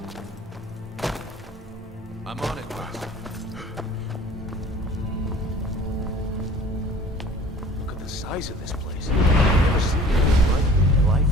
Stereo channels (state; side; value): normal; both; correlation 0.47